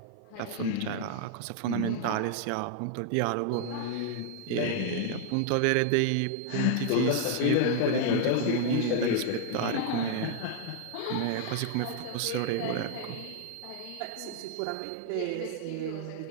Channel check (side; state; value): both; different; correlation 0.00